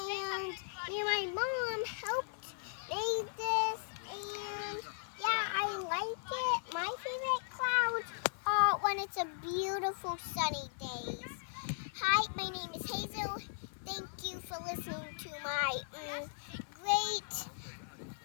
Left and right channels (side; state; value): right; silent; 53 dB below the other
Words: me and my mom helped make this, and yeah, I like it. My favorite clouds are when it's a beautiful sunny day.